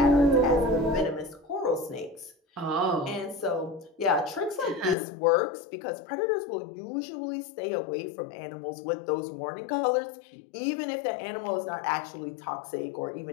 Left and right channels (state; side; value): drops out; right; at 5.0 s